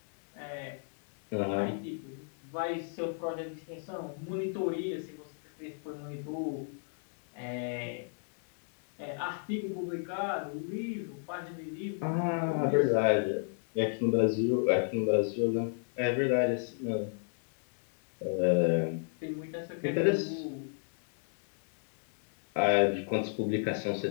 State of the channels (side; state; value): right; silent; digital silence